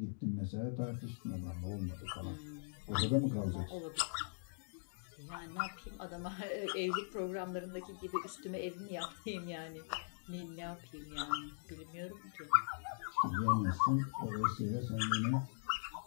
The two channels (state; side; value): silent; right; digital silence